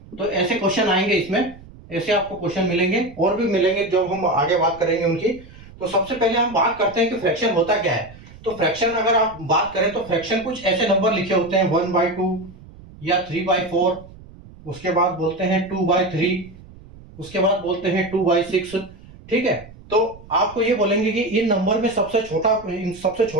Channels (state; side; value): noise; right; rumble, 20 dB below the sound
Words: तो ऐसे क्वेश्चन आएंगे इसमें, ऐसे आपको क्वेश्चन मिलेंगे और भी मिलेंगे जब हम आगे बात करेंगे उनकी। तो सबसे पहले हम बात करते हैं कि फ्रैक्शन होता क्या है। तो फ्रैक्शन अगर आप बात करें तो फ्रैक्शन कुछ ऐसे नंबर लिखे होते हैं 1/2 या 3/4, उसके बाद बोलते हैं 2/3, उसके बाद बोलते हैं 2/6, ठीक है। तो आपको ये बोलेंगे कि इन नंबर में सबसे